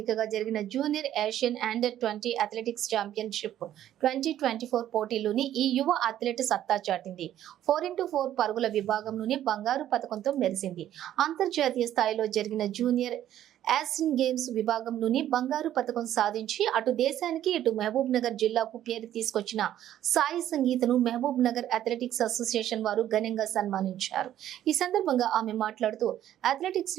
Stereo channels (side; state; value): left; quieter; 11.8 dB